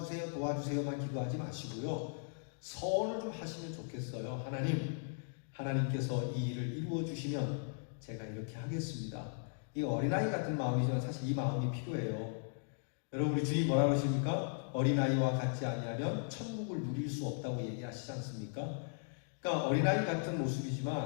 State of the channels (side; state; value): right; silent; digital silence